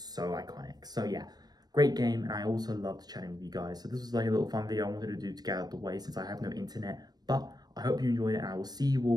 so iconic. So yeah, great game, and I also loved chatting with you guys. So this was like a little fun video I wanted to do to get out of the way since I have no internet. But I hope you enjoyed it, and I will see you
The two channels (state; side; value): late; left; 0.19 ms